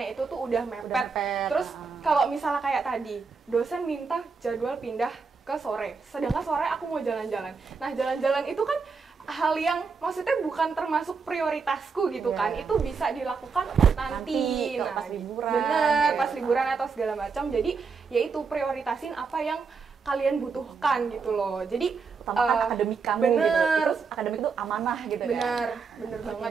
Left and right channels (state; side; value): quieter; left; 5.1 dB